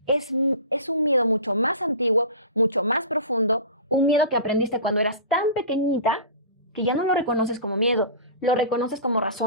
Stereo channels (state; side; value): inverted; both; correlation -0.35